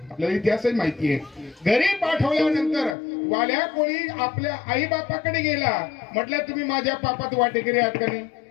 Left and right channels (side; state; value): right; drops out; at 3.0 s